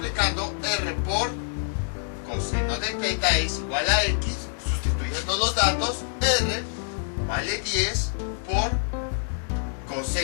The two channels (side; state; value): right; silent; digital silence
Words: R por coseno de teta es igual a X. Sustituyendo los datos, R vale 10 por